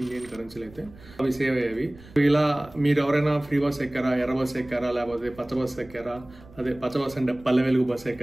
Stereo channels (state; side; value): noise; right; rumble, 22 dB below the sound